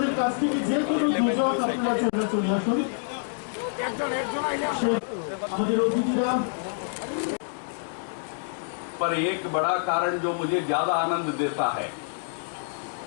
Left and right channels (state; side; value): silent; right; digital silence